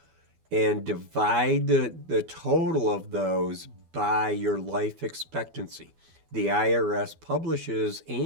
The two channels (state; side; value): late; left; 12 ms